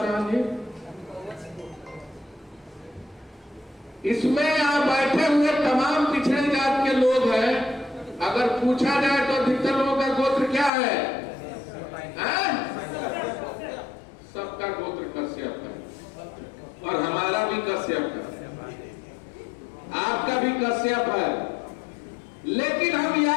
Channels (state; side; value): drops out; right; at 10.7 s